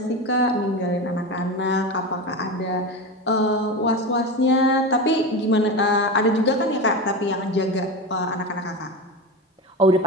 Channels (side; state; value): both; normal; correlation 0.23